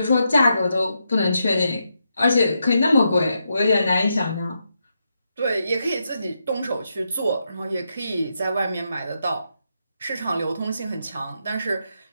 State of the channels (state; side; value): inverted; both; correlation -0.83